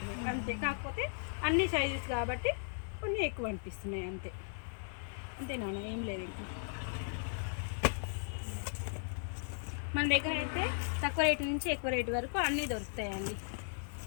అంతే. కాకపోతే అన్ని సైజెస్ కాబట్టి కొన్ని ఎక్కువ అనిపిస్తున్నాయి అంతే. అంతే నాన్న, ఏం లేదు. ఇంకా మన దగ్గర అయితే తక్కువ రేటు నుంచి ఎక్కువ రేటు వరకు అన్నీ దొరుకుతాయండి.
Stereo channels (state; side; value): silent; right; digital silence